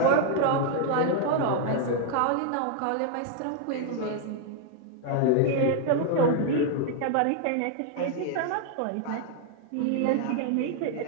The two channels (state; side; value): different; both; correlation 0.00